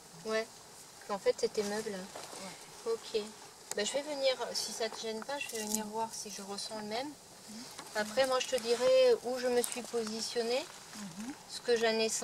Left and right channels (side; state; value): both; identical; correlation 1.00